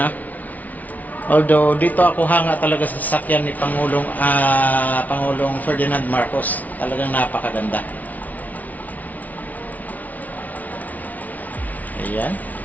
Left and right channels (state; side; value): late; right; 0.075 ms